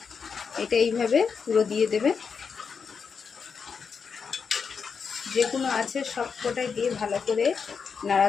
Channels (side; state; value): right; quieter; 5.9 dB